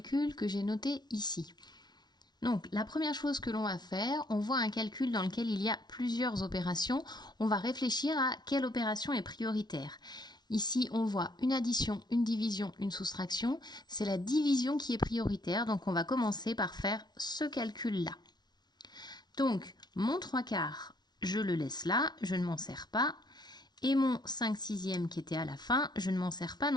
que j'ai noté ici. Donc la première chose que l'on va faire, on voit un calcul dans lequel il y a plusieurs opérations. On va réfléchir à quelle opération est prioritaire. Ici, on voit une addition, une division, une soustraction. C'est la division qui est prioritaire, donc on va commencer par faire ce calcul-là. Donc mon 3/4, je le laisse là, je ne m'en sers pas. Et mon 5/6 qui était à la fin, je ne m'en sers pas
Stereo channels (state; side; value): late; right; 0.20 ms